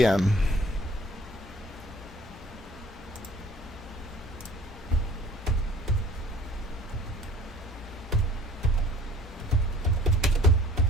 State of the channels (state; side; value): normal; both; correlation 0.51